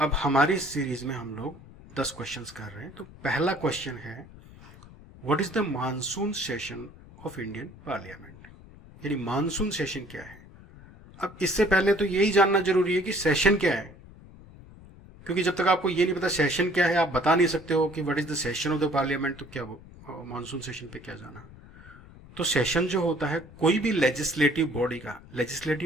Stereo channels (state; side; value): noise; left; rumble, 20 dB below the sound